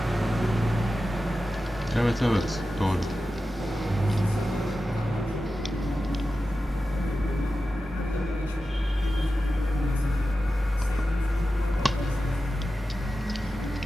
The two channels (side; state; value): both; normal; correlation 0.92